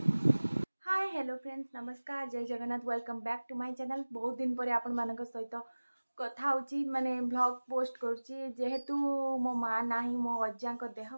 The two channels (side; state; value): both; inverted; correlation -1.00